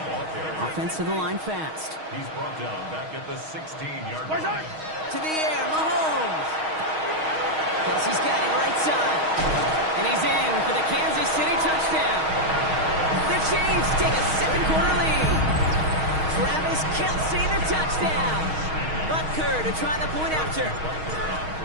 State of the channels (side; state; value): left; late; 6.4 ms